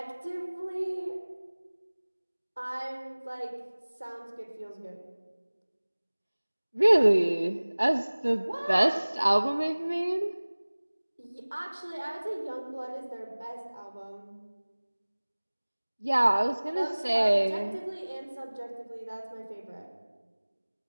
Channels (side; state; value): both; inverted; correlation -1.00